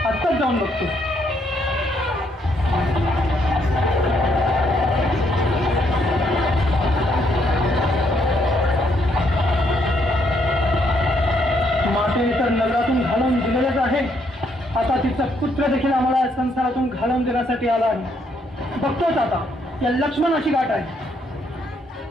आत्ताच जाऊन बघतो. मातेने तर नगरातून घालवून दिलेलेच आहे, आता तिचा पुत्र देखील आम्हाला संसारातून घालवून देण्यासाठी आला आहे. बघतोच आता या लक्ष्मणाची गाठ आहे.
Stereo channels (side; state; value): both; normal; correlation 0.72